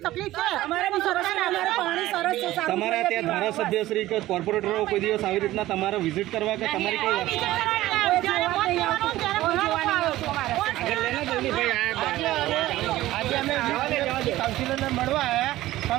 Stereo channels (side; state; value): left; quieter; 15.9 dB